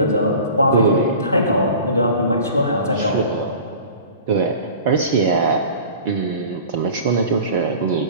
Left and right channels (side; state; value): both; inverted; correlation -0.41